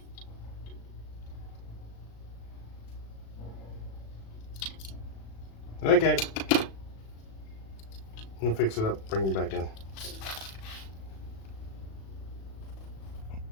Okay. I'm gonna fix it up, bring it back in.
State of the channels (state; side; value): late; right; 36 ms